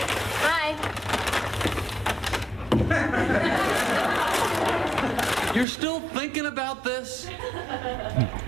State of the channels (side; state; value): left; drops out; at 5.7 s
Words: Hi. You're still thinking about this?